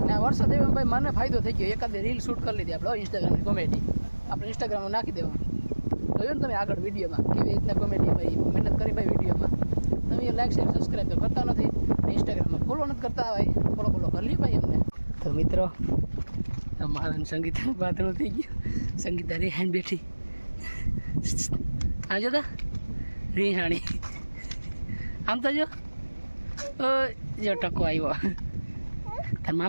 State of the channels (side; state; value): both; inverted; correlation -1.00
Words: ને આ વરસાદ એવો ભાઈ મને ફાયદો થઈ ગયો. એકાદ રીલ શૂટ કરી લીધી આપણે ઇન્સ્ટાગ્રામની કોમેડી આપણે ઇન્સ્ટાગ્રામમાં નાખી દેવાનું જોયું ને તમે આગળ વિડીયોમાં કેવી રીતના કોમેડી ભાઈ મહેનત કરી ભાઈ વિડીયોમાં તમે લાઈક શેર સબસ્ક્રાઈબ તો કરતા નથી ઇન્સ્ટાગ્રામમાં ફોલો નથી કરતા ભાઈ ફોલો કરી લ્યો ભાઈ અમને. તો મિત્રો મારા સંગીતા પાતળું થઈ ગયું સંગીતા રેહાણી બેઠી આ જોતા રેહાણી આમ તો જો જો ટકો આવ્યો તાર